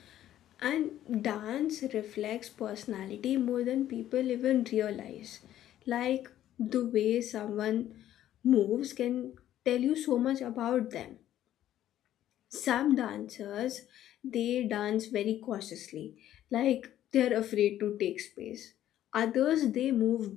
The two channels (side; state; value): right; quieter; 12.2 dB